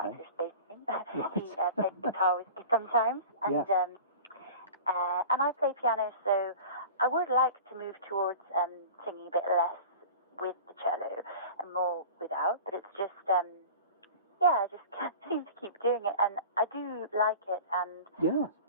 his bass name. He plays guitar with me sometimes, and I play piano, so I would like to move towards singing a bit less with the cello and more without, but it's just I just can't seem to keep doing it, and I do like it, and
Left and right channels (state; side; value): inverted; both; correlation -0.37